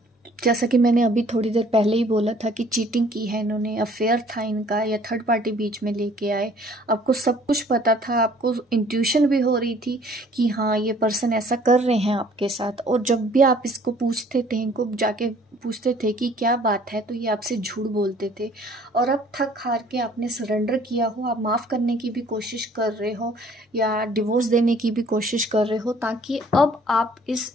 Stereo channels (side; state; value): both; normal; correlation 0.57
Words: जैसा कि मैंने अभी थोड़ी देर पहले ही बोला था कि चीटिंग की है इन्होंने, अफेयर था इनका, या थर्ड पार्टी बीच में लेके आए। आपको सब कुछ पता था, आपको इंट्यूशन भी हो रही थी कि हाँ ये पर्सन ऐसा कर रहे हैं आपके साथ। और जब भी आप इसको पूछते थे, इनको जाके पूछते थे कि क्या बात है, तो ये आपसे झूठ बोलते थे। और अब थक हार के आपने सरेंडर किया हो, आप माफ़ करने की भी कोशिश कर रहे हो, या डिवोर्स देने की भी कोशिश कर रहे हो, ताकि अब आप इस